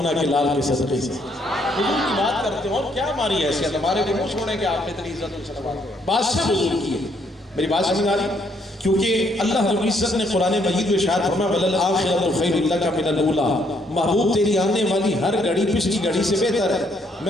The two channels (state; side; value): normal; both; correlation 0.70